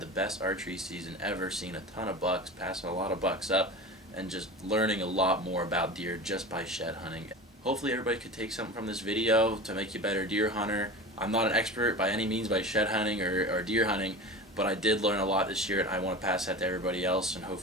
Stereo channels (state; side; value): normal; both; correlation 0.31